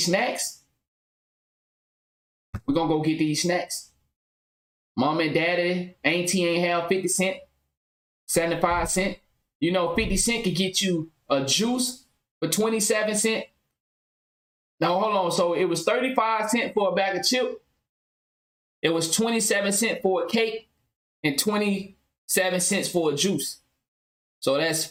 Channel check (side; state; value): both; normal; correlation 0.97